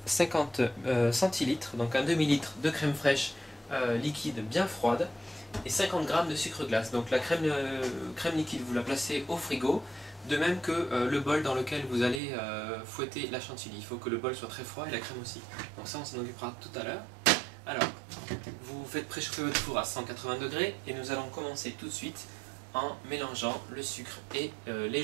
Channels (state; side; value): drops out; left; at 12.2 s